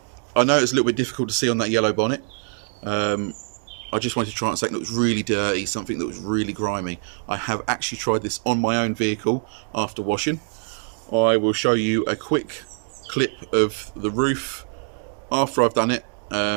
I know it's a little bit difficult to see on that yellow bonnet. I just wanted to try something that was really dirty, something that was really grimy. I have actually tried this on my own vehicle after washing. I will show you a quick clip of the roof after I've done it,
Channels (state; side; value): silent; left; 63 dB below the other